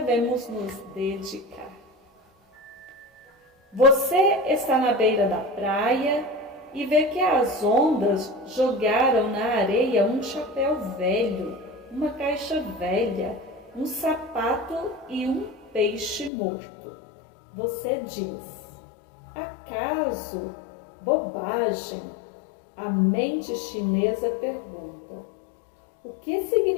nos dedicar. Você está na beira da praia e vê que as ondas jogaram na areia um chapéu velho, uma caixa velha, um sapato e um peixe morto. Você diz: acaso? Bobagem. A mente chinesa pergunta: o que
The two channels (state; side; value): drops out; right; at 16.3 s